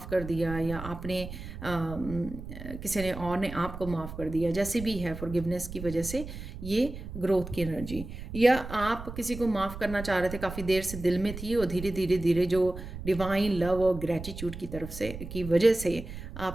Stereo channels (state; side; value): noise; right; rumble, 10 dB below the sound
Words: कर दिया, या आपने किसी ने और ने आपको माफ़ कर दिया, जैसे भी है, फॉरगिवनेस की वजह से ये ग्रोथ की एनर्जी। या आप किसी को माफ़ करना चाह रहे थे, काफ़ी देर से दिल में थी, और धीरे धीरे धीरे जो डिवाइन लव और ग्रेटिट्यूड की तरफ से की वजह से